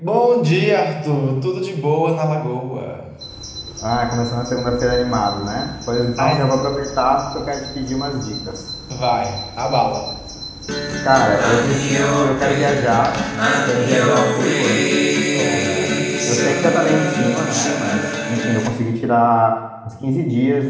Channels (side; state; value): both; identical; correlation 1.00